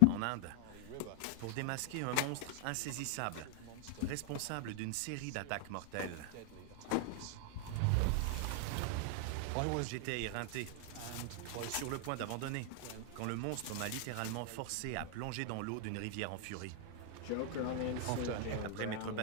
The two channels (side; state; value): both; different; correlation 0.00